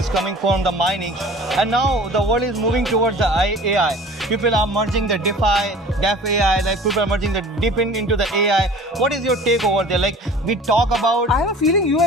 coming from the mining, and now the world is moving towards the AI. People are merging the DeFi, AI, people are merging the deep into the AI. What is your take over there? We talk about... I have a feeling you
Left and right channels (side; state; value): both; normal; correlation 0.44